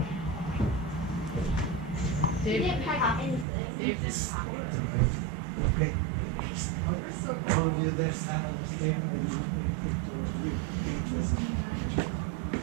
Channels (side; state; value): left; drops out; at 3.5 s